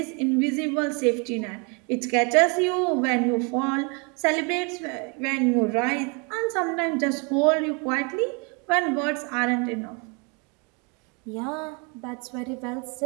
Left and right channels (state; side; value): quieter; left; 33.2 dB